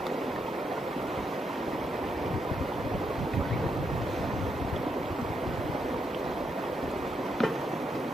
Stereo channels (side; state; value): both; normal; correlation 0.80